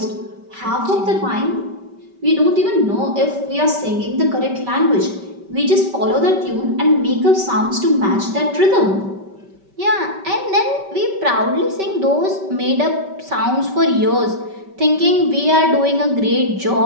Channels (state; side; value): late; left; 5.2 ms